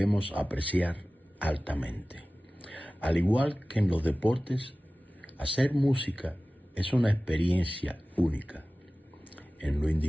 apreciar altamente. Al igual que en los deportes, hacer música es una experiencia única, en lo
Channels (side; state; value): both; normal; correlation 0.97